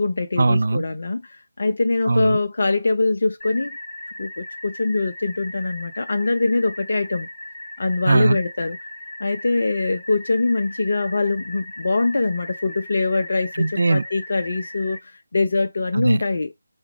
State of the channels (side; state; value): both; inverted; correlation -0.95